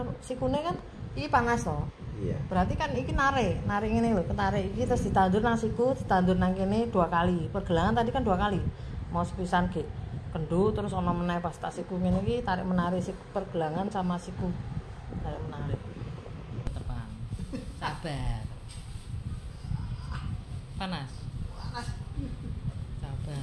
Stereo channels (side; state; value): both; identical; correlation 1.00